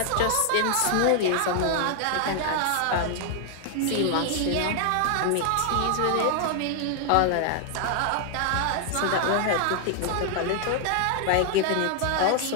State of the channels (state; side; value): different; both; correlation 0.00